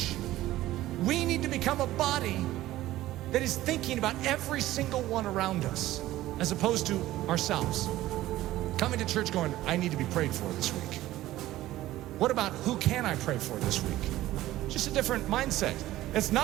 We need to become a body that is thinking about every single one around us, as opposed to ourselves. Coming to church going, I need to be prayed for this week. What about who can I pray for this week? Just a different mindset. It's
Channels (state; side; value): quieter; left; 15.4 dB